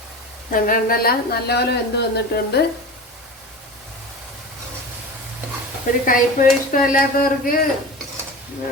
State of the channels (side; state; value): both; normal; correlation 0.31